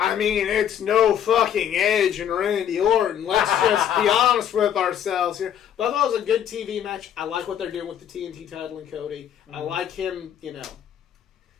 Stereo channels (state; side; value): quieter; right; 9.6 dB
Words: mean, it's no fucking Edge and Randy Orton. Let's just be honest with ourselves here. But I thought it was a good TV match. I like what they're doing with the TNT title and Cody. Mm-hmm. I like him,